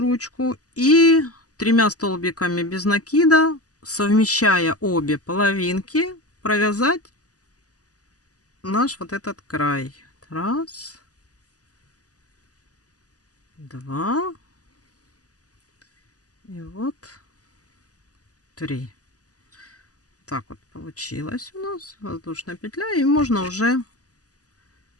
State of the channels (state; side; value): late; right; 0.67 ms